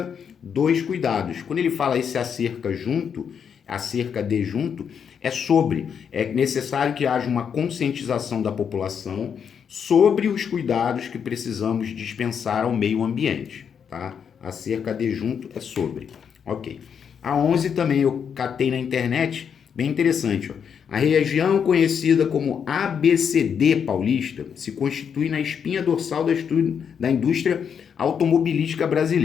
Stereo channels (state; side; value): quieter; right; 7.4 dB